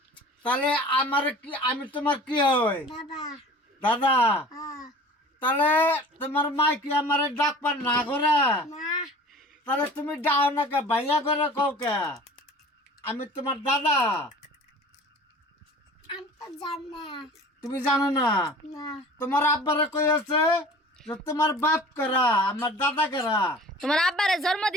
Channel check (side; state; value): both; normal; correlation 0.43